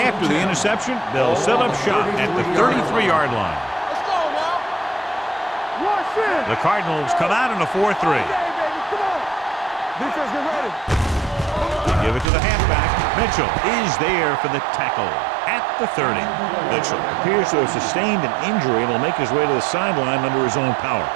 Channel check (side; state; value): left; drops out; at 12.2 s